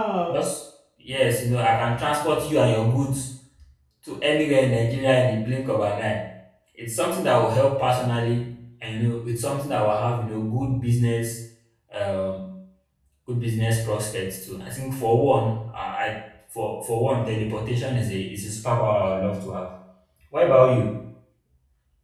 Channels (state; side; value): identical; both; correlation 1.00